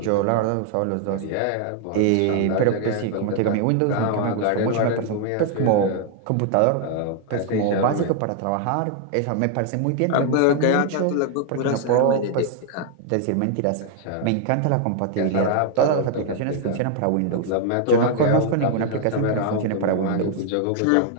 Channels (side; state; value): both; different; correlation 0.00